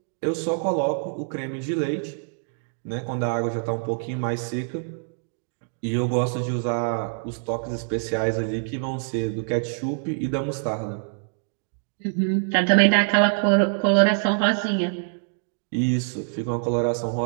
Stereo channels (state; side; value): silent; left; digital silence